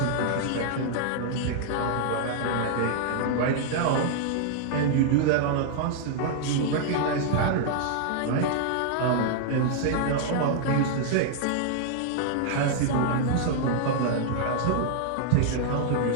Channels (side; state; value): both; different; correlation -0.01